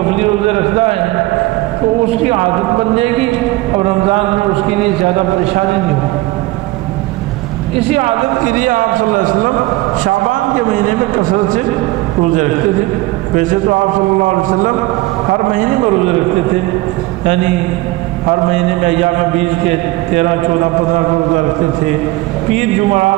روزے رکھتا ہے تو اس کی عادت بن جائے گی، اور رمضان میں اس کے لیے زیادہ پریشانی نہیں ہوگی۔ اسی عادت کے لیے آپ صلی اللہ علیہ وسلم شعبان کے مہینے میں کثرت سے روزے رکھتے تھے۔ ویسے تو آپ صلی اللہ علیہ وسلم ہر مہینے میں روزے رکھتے تھے، یعنی ہر مہینے میں ایام بیچ کے 13، 14، 15 کو روزہ رکھتے تھے، پیر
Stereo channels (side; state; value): left; quieter; 19.6 dB